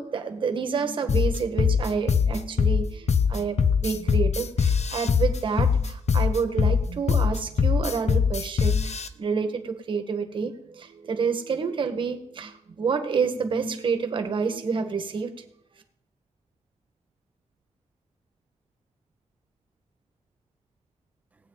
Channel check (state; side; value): normal; both; correlation 0.69